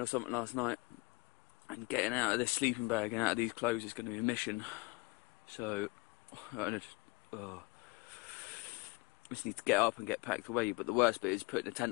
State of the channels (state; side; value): quieter; right; 25.3 dB